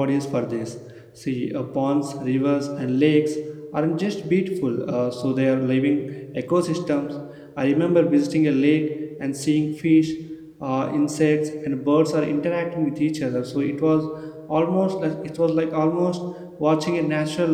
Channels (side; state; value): both; identical; correlation 1.00